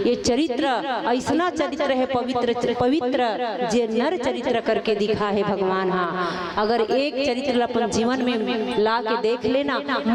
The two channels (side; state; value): both; identical; correlation 1.00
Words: चरित्र ऐसा चरित्र है पवित्र पवित्र जे नर चरित्र करके दिखा है भगवान। हाँ, अगर एक चरित्र अपन जीवन में ला के देख लेना,